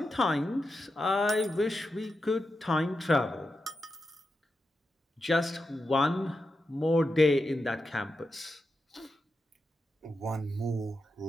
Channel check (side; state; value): both; normal; correlation 0.88